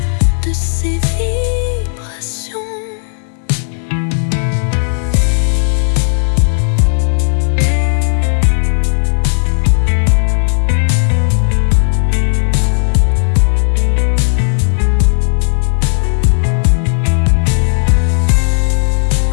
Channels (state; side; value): silent; right; digital silence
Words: de ses vibrations.